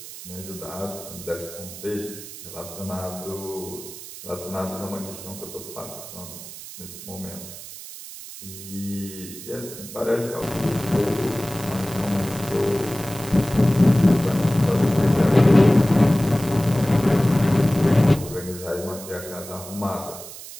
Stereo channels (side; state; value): right; noise; hiss, 13 dB below the sound